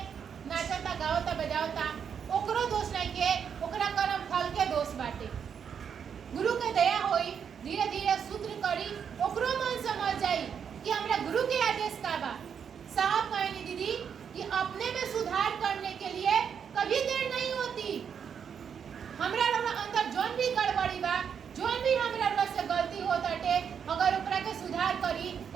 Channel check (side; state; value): left; quieter; 7.4 dB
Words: नाचता गावता बजावता ओकरो दोष नहीं के ओकरा कर्म फल के दोष बाटे। गुरु के दया होई धीरे धीरे सूत्र करी ओकरो मन समझ जाई कि हमरा गुरु के आदेश का बा। साहब कहनी दीदी कि अपने में सुधार करने के लिए कभी देर नहीं होती। हमरा अंदर जोन भी गड़बड़ी बा जोन भी हमरा से गलती होताटे अगर ओकरा के सुधार करी